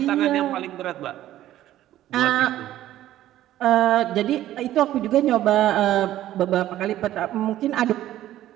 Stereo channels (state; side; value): quieter; left; 13.5 dB